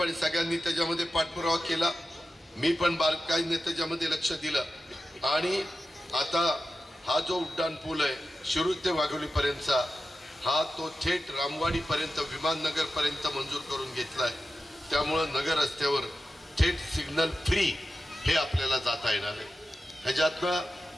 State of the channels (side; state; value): both; normal; correlation 0.92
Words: सगळ्यांनी त्याच्यामध्ये पाठपुरावा केला। मी पण बारकाईने त्याच्यामध्ये लक्ष दिलं आणि आता हा जो उड्डाण पूल आहे शिरूर ते वाघोली पर्यंतचा, हा तो थेट रामवाडी पर्यंत विमाननगर पर्यंत मंजूर करून घेतलाय। त्यामुळे नगर रस्त्यावर थेट सिग्नल फ्री हे आपल्याला जाता येणार आहे। ह्याच्यातनं